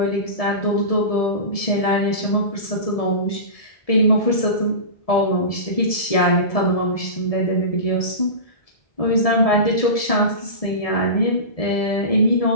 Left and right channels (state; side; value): late; right; 1.7 ms